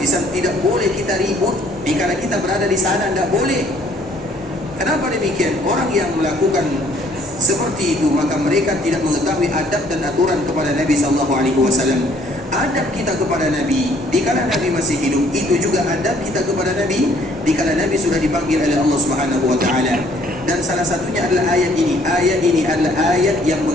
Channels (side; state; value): both; normal; correlation 0.61